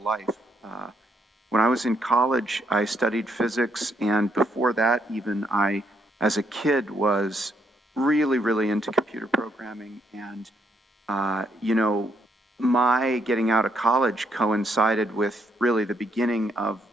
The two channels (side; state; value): both; normal; correlation 0.74